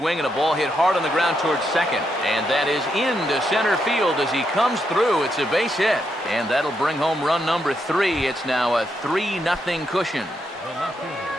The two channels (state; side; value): normal; both; correlation 0.80